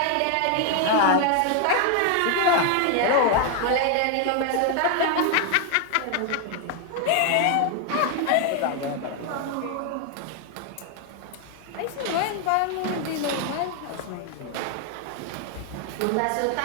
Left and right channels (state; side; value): different; both; correlation 0.00